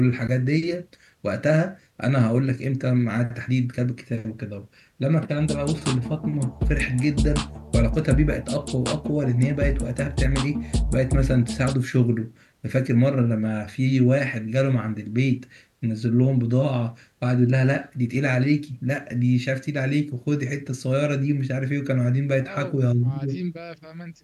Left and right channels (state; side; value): identical; both; correlation 1.00